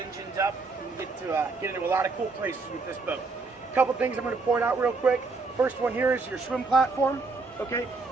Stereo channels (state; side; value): quieter; left; 4.0 dB